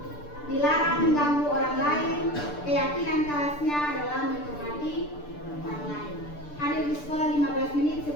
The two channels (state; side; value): late; right; 6.8 ms